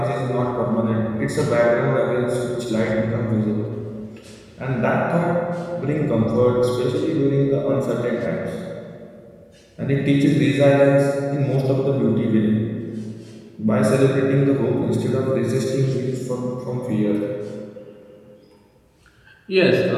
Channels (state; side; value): identical; both; correlation 1.00